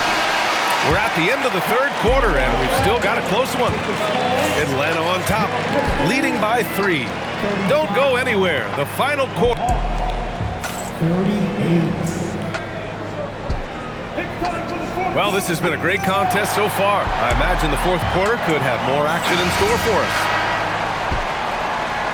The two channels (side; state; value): both; identical; correlation 1.00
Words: We're at the end of the third quarter, and we've still got a close one. Atlanta on top, leading by 3. Don't go anywhere. The final quarter. 38. Well, this has been a great contest so far. I imagine the fourth quarter could have more action in store for us.